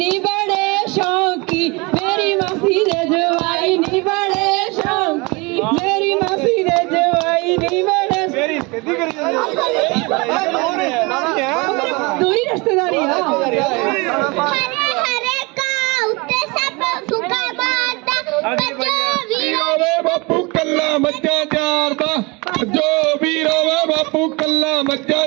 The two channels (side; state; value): left; quieter; 26.7 dB